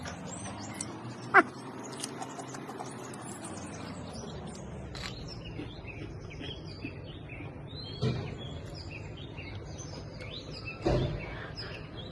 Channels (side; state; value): both; identical; correlation 1.00